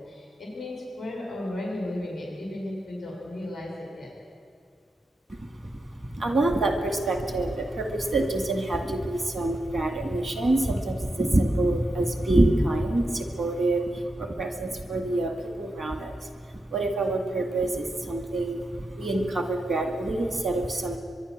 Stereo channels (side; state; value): both; normal; correlation 0.87